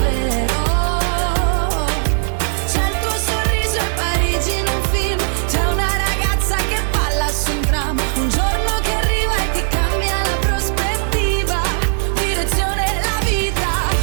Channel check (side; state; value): left; silent; 67 dB below the other